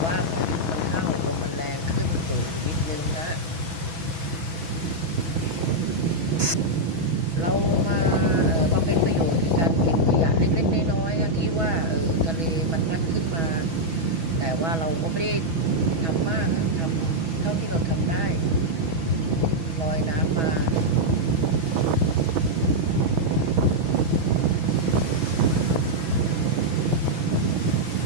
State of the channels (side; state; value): left; late; 6.1 ms